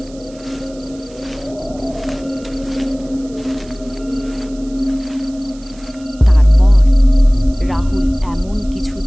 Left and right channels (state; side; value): noise; right; hiss, 24 dB below the sound